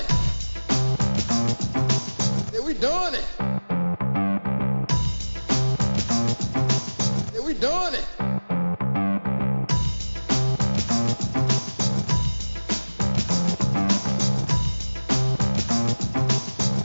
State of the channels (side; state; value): both; inverted; correlation -1.00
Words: Yeah, we doing it. Yeah, we doing it.